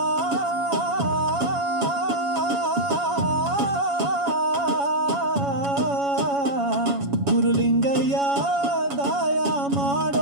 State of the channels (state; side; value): late; left; 7.2 ms